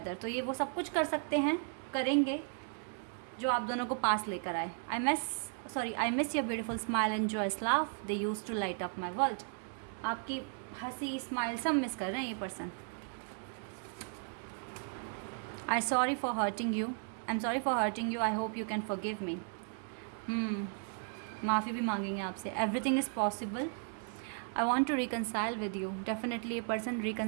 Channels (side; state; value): left; silent; 54 dB below the other